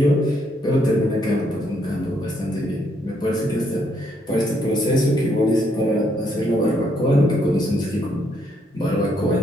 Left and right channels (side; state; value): both; normal; correlation 0.73